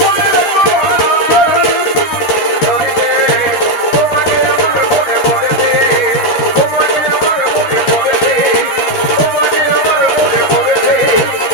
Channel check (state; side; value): late; right; 13 ms